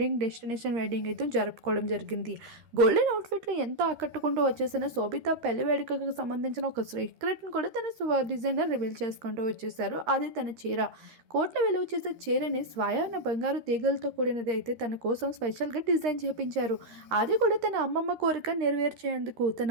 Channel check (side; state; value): left; late; 13 ms